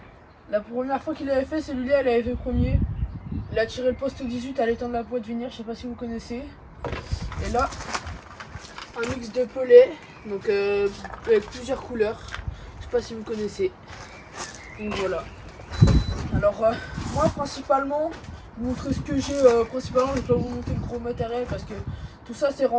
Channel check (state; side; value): identical; both; correlation 1.00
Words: la première fois qu'il avait fait celui-là, il avait fait premier. Il a tiré le poste 18 à l'étang de la Pointe Venir, je sais pas si vous connaissez. Et là, un mix de pelets, donc avec plusieurs couleurs, je sais pas si vous connaissez. Donc voilà. Alors moi principalement, vous montrer ce que j'ai principalement, je vais pas vous montrer le gros matériel parce que tout ça c'est